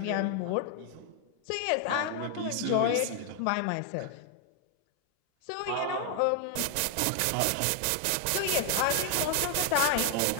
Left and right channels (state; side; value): different; both; correlation 0.00